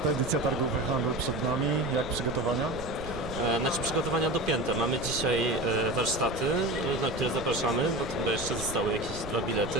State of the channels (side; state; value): right; noise; rumble, 10 dB below the sound